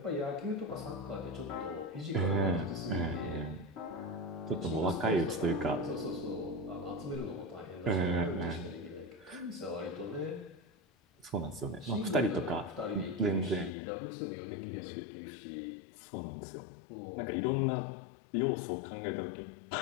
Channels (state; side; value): drops out; right; at 13.8 s